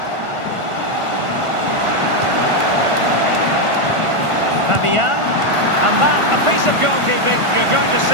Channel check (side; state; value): left; late; 1.4 ms